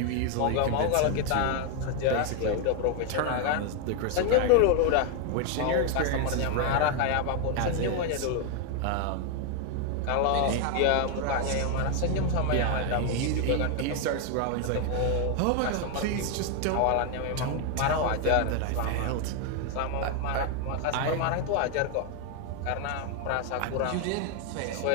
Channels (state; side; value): different; both; correlation 0.01